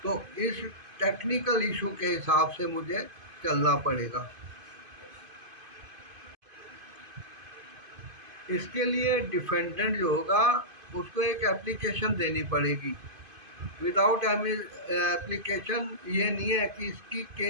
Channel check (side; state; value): left; late; 2.5 ms